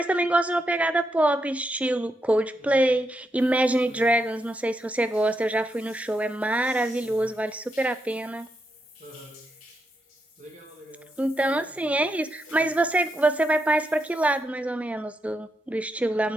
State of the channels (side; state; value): both; normal; correlation 0.82